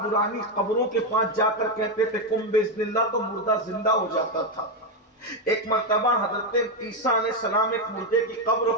قبروں کے پاس جا کر کہتے تھے کم باذن اللہ تو مردہ زندہ ہو جاتا تھا۔ ایک مرتبہ حضرت عیسیٰ علیہ السلام ایک مردے کی قبر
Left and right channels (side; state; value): both; normal; correlation 0.06